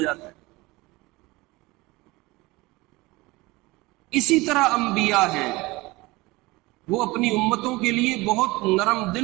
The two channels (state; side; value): quieter; left; 21.7 dB